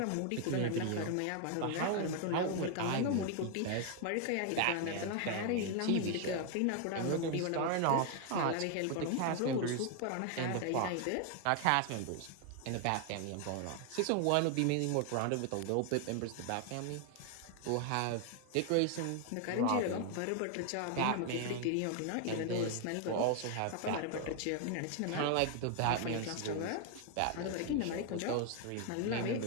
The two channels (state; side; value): different; both; correlation 0.00